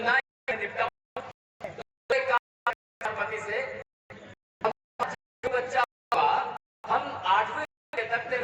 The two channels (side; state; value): both; identical; correlation 1.00